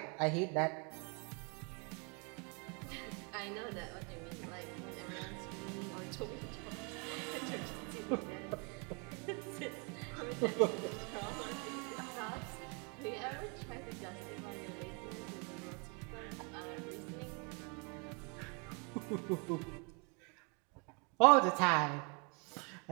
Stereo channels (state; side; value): quieter; left; 34.4 dB